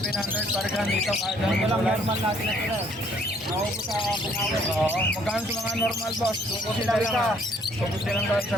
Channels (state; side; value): normal; both; correlation 0.63